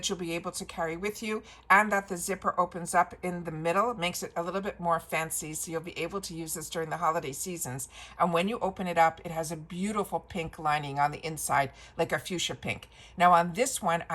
you'll be able to carry with you, and that the zipper opens up in the middle. It makes it a little bit more fancy, so you'll be able to use this during the holiday seasons. And when you open it up, it has a beautiful pink lining on the inside, like a fuchsia pink. Now on this one,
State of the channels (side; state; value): both; identical; correlation 1.00